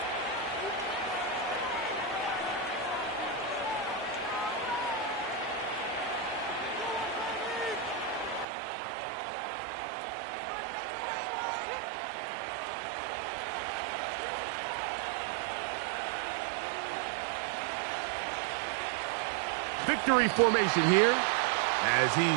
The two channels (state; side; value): drops out; left; at 8.5 s